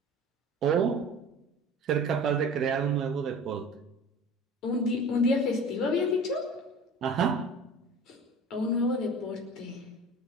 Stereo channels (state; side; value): normal; both; correlation 0.39